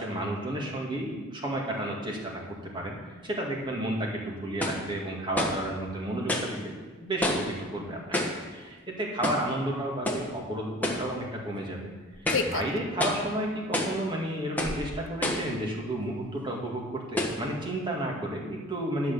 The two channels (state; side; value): normal; both; correlation 0.44